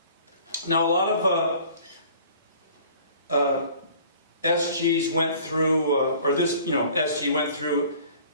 Now a lot of SGs went through, or this, SG went through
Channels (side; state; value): both; inverted; correlation -0.51